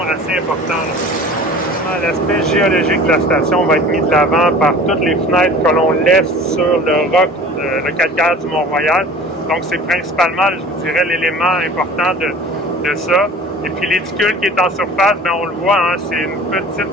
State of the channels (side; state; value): both; normal; correlation 0.43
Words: assez important. L'aspect géologique de la station va être mis de l'avant par toutes les fenêtres que l'on laisse sur le roc, le calcaire du Mont-Royal. Donc, c'est principalement, je vous dirais, l'élément important de ça. Et puis, l'éticule qui est en surface, bien, on le voit, hein, c'est une